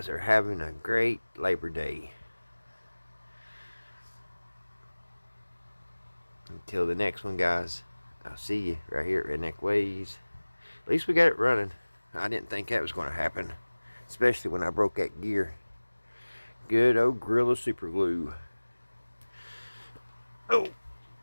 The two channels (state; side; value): inverted; both; correlation -1.00